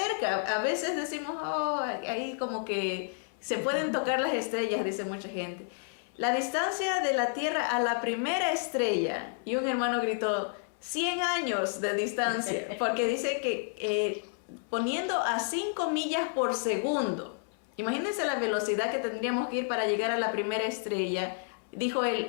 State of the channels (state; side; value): silent; right; 57 dB below the other